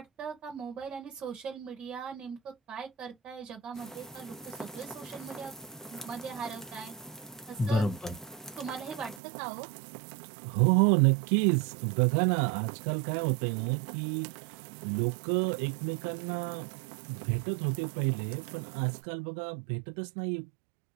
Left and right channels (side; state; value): left; drops out; at 9.2 s